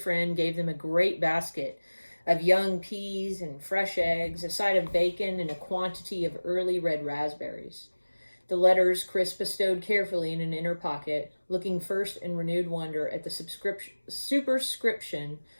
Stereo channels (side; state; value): both; inverted; correlation -1.00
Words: gave them a great basket of young peas and fresh eggs, a side of bacon, and a quantity of early red raspberries. The letters Chris bestowed carefully in an inner pocket, looking first in renewed wonder at the superscription